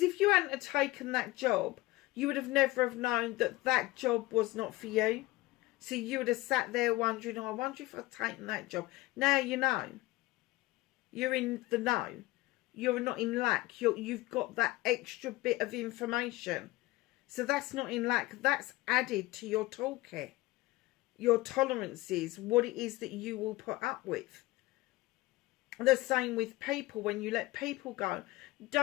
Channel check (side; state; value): right; quieter; 19.6 dB